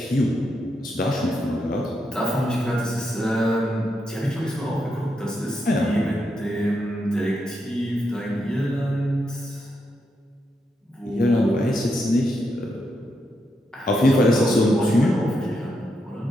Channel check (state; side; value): normal; both; correlation 0.82